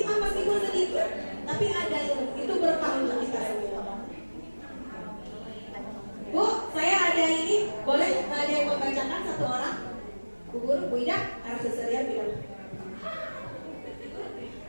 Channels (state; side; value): inverted; both; correlation -1.00